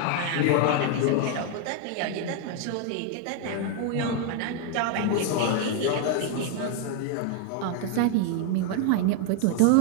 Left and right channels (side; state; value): both; different; correlation 0.00